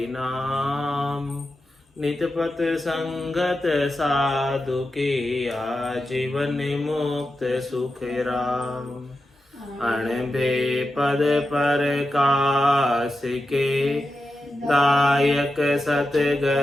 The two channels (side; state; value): both; normal; correlation 0.90